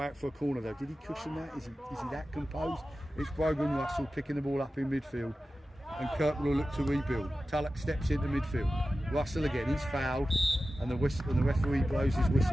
for a corner though. Did he cushion that? Is he that composed? It's Brogan Russell picking the ball up in midfield. And Kirkwall will look to rebuild. Tullock steps into midfield. Russell again, he's fouled. And the referee blows his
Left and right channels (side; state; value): both; normal; correlation 0.94